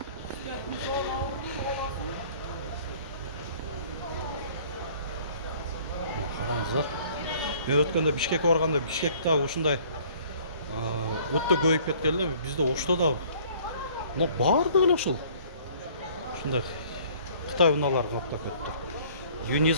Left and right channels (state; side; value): inverted; both; correlation -0.54